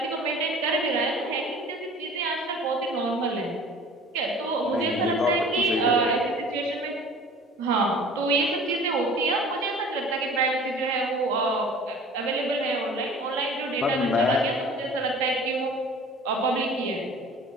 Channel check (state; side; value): normal; both; correlation 0.44